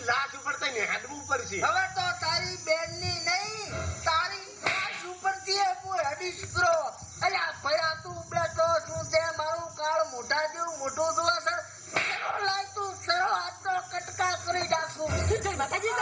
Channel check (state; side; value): identical; both; correlation 1.00